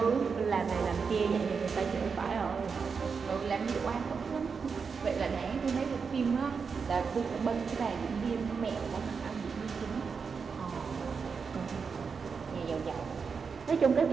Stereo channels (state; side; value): quieter; left; 5.6 dB